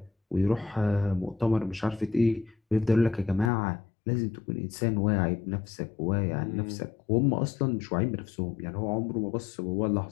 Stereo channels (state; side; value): drops out; right; at 3.5 s